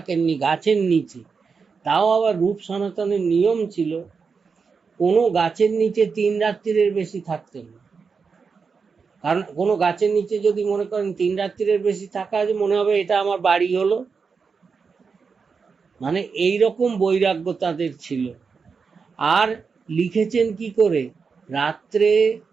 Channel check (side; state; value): left; quieter; 5.3 dB